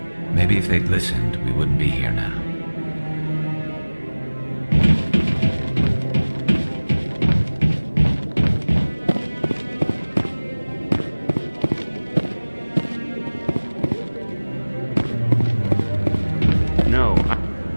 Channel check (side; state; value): both; inverted; correlation -1.00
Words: Maybe if they'd listened, we wouldn't be here now.